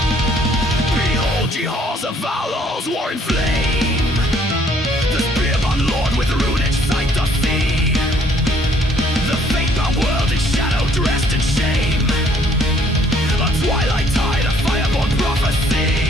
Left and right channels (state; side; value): normal; both; correlation 0.63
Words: Behold ye halls of Valos, war in flame. The spearman lord with runic sight doth see. The fate-bound world in shadow dressed in shame. A twilight tide, a fireborn